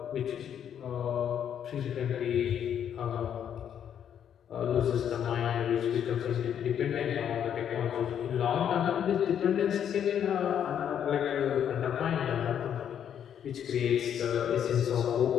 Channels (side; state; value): right; quieter; 9.1 dB